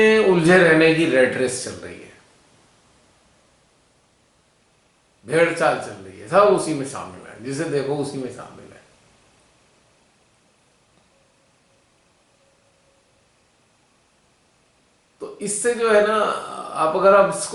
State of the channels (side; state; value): both; identical; correlation 1.00